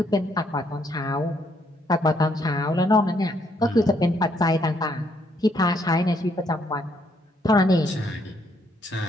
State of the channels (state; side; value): normal; both; correlation 0.71